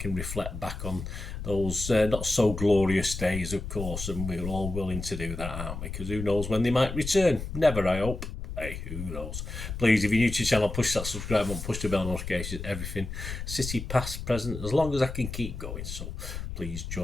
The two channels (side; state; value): left; noise; rumble, 7 dB below the sound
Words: reflect back on those not so glorious days, of course, and we're all willing to do that, aren't we? Because who knows when they might return? Never, I hope. Hey, who knows? Please, if you're new to the channel, push that subscribe button, push the bell notifications, everything. City, past, present, as long as I can keep going. So please